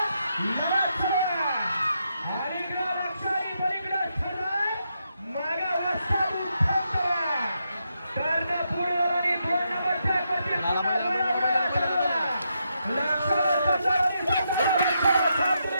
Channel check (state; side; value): inverted; both; correlation -0.82